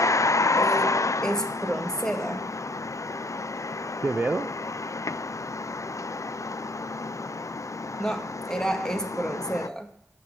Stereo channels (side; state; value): both; normal; correlation 0.59